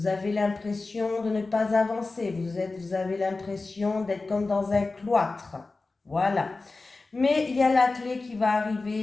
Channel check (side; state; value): right; quieter; 3.6 dB